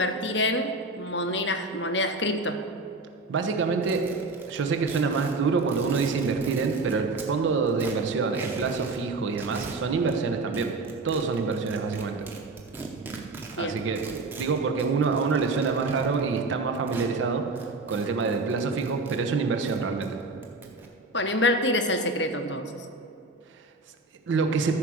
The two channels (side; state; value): left; quieter; 3.1 dB